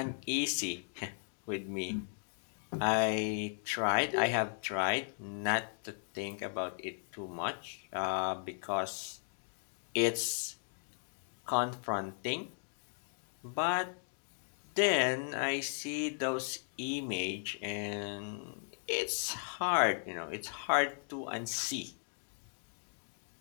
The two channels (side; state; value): right; silent; digital silence